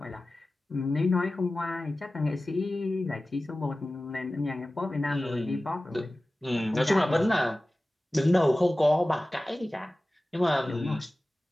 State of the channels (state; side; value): normal; both; correlation 0.96